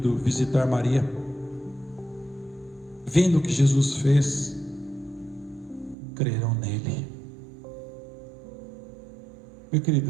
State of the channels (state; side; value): drops out; left; at 6.0 s